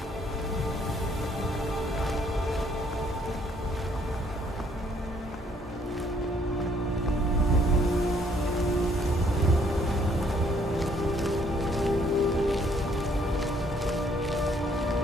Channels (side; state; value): both; normal; correlation 0.65